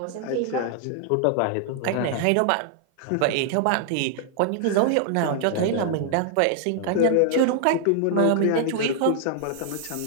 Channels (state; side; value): different; both; correlation -0.01